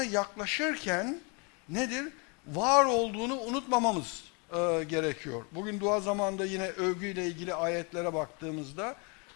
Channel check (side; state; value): right; quieter; 33.1 dB